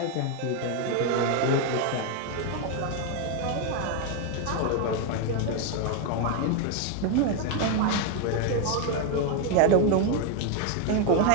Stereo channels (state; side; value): different; both; correlation 0.01